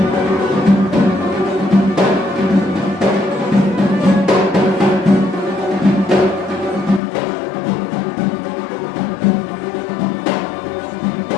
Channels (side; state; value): right; drops out; at 7.0 s